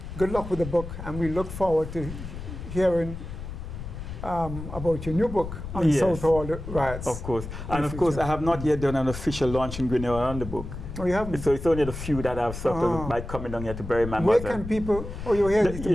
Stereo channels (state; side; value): noise; left; rumble, 9 dB below the sound